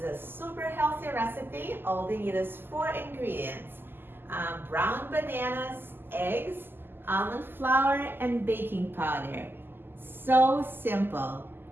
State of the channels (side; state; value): left; late; 0.098 ms